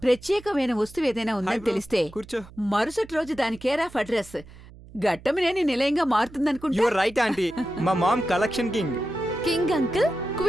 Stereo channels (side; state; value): right; noise; hum, 20 dB below the sound